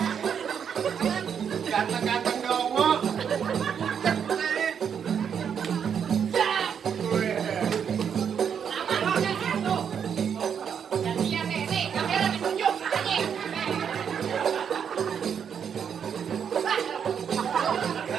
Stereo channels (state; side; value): quieter; left; 7.6 dB